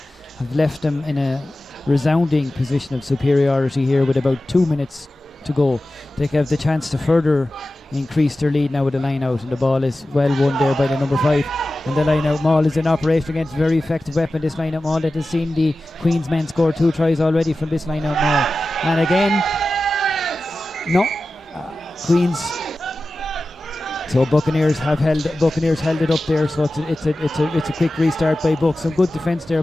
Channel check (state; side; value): normal; both; correlation 0.94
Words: have left them in a resounding position of superiority here with about 2 minutes to go. They have the chance to further increase their lead now with the line out, and the ball is well won there by the number 5, and the line out maul is in operation against a very effective weapon, this line out maul that has seen the Queens men score 2 tries already from this line out maul, and again Queens. So Buccaneers held it up there. So it's a quick restart by Bucks. Some good defence there